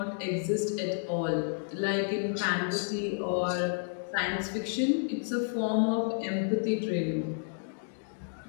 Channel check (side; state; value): right; silent; digital silence